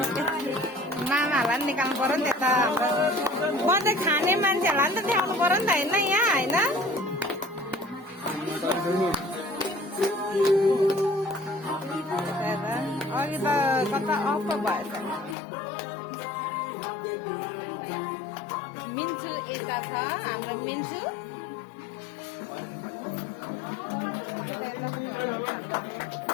मामाहरूलाई पनि निकाल्नु पर्यो नि त बर्दै खाने मान्छेहरूलाई नि त देखाउनु पर्यो नि त होइन यहाँ होइन अघि त कता अफ भएछ मिन्चु यता छ हाम्रो मिन्चु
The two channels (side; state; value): right; drops out; at 15.4 s